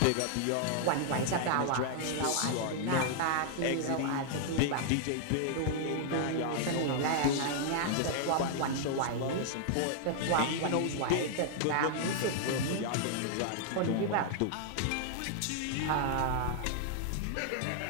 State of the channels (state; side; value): different; both; correlation -0.01